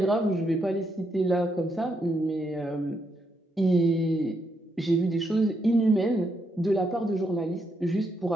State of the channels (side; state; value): both; normal; correlation 0.79